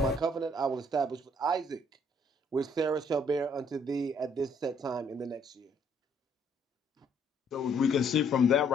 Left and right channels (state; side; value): normal; both; correlation 0.65